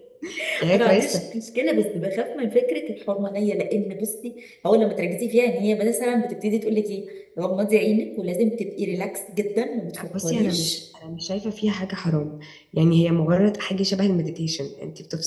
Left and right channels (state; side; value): identical; both; correlation 1.00